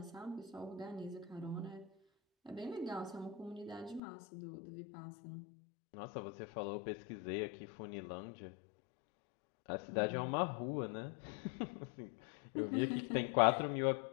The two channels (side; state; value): right; drops out; at 4.0 s